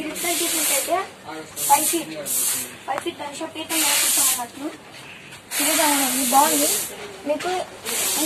ఇక్కడ చూసినట్టయితే 5 feet గణేష పీఠం మీద కూర్చోమన్నట్టు. ఇదిగా ఉంది, బాగుంది. మీకు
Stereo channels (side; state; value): both; identical; correlation 1.00